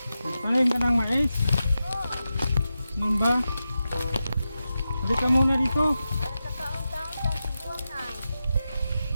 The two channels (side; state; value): both; inverted; correlation -0.91